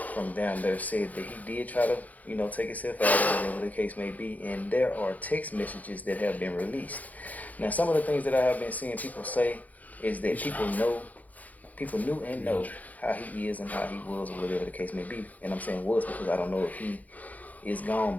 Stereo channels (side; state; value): right; late; 0.078 ms